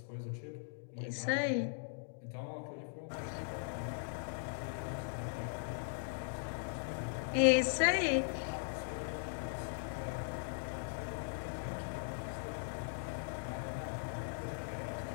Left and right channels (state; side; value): silent; right; digital silence